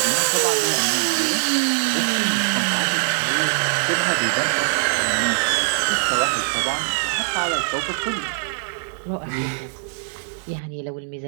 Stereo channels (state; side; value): silent; left; 64 dB below the other